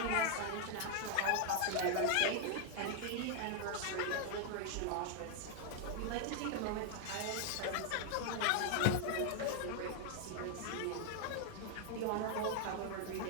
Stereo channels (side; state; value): both; different; correlation 0.00